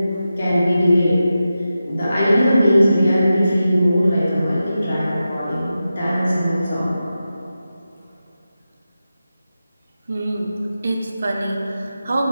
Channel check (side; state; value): both; inverted; correlation -0.92